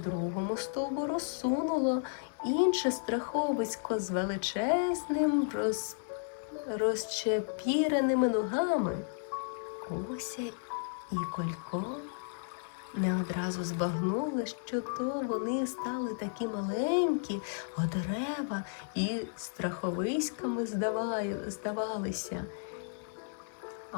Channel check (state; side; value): silent; right; digital silence